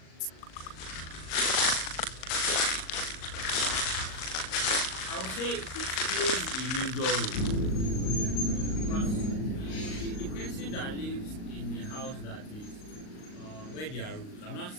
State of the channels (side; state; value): right; late; 38 ms